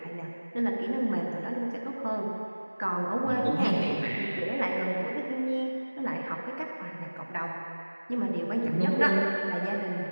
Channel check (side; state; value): both; inverted; correlation -1.00